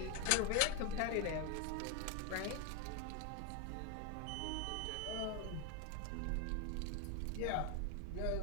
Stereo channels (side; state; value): both; different; correlation 0.01